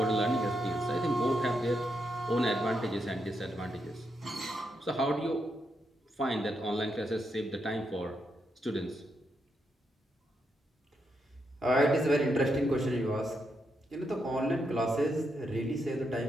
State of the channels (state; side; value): normal; both; correlation 0.82